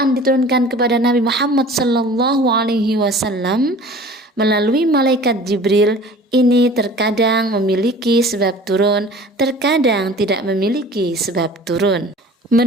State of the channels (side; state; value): both; normal; correlation 0.44